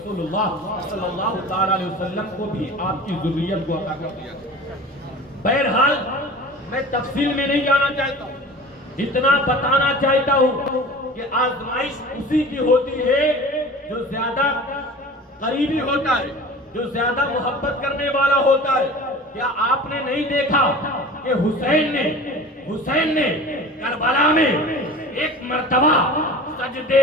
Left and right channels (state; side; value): normal; both; correlation 0.38